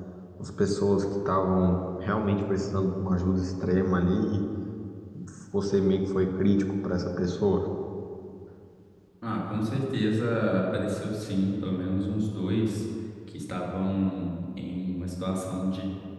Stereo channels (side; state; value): both; identical; correlation 1.00